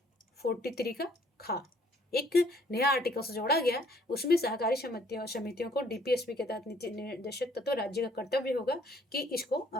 43 का खा एक नया आर्टिकल से जोड़ा गया। उसमें सहकारी समितियों को डीपीएसपी के तहत नीति निर्देशक तत्व राज्य का कर्तव्य होगा कि इसको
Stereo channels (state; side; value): normal; both; correlation 0.62